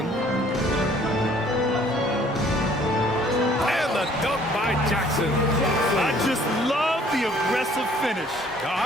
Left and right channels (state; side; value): normal; both; correlation 0.58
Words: And the dunk by Jackson. I just love the aggressive finish.